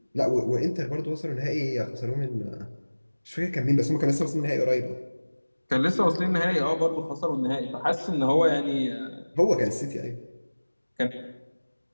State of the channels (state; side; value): inverted; both; correlation -1.00